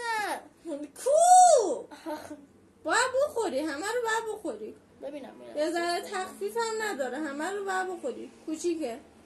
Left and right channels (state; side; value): identical; both; correlation 1.00